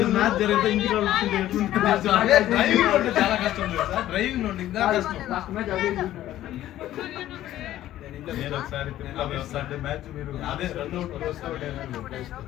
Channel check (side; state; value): right; quieter; 13.5 dB